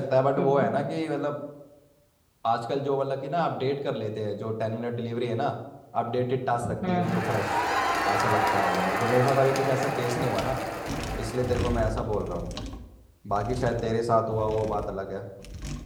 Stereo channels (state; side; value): identical; both; correlation 1.00